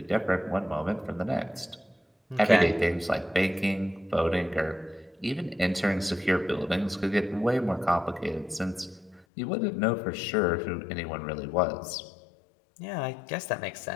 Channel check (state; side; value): drops out; right; at 9.2 s